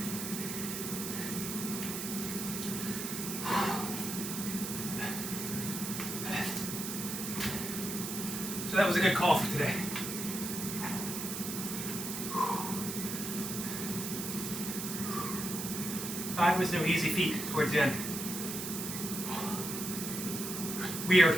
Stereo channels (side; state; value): right; noise; hiss, 5 dB below the sound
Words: So that was a good call for today. Five was no easy feat towards the end. Weird.